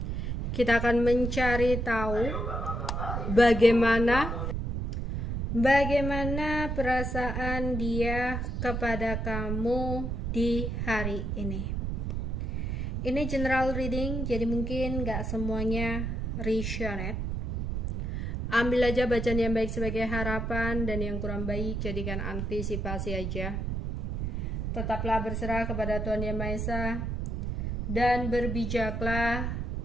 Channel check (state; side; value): noise; right; rumble, 2 dB below the sound